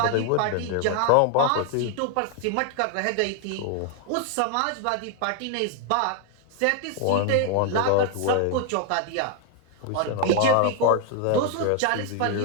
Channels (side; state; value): both; different; correlation 0.00